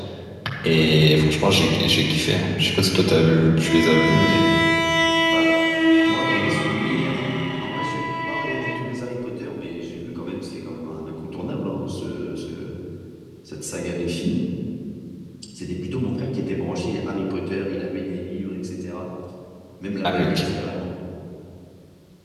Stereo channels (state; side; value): identical; both; correlation 1.00